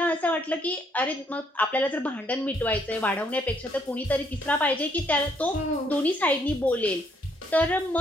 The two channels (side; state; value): both; normal; correlation 0.70